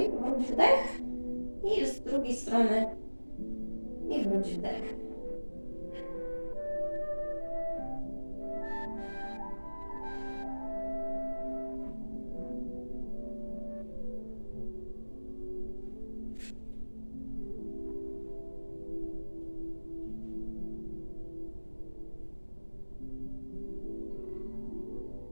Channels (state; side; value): inverted; both; correlation -1.00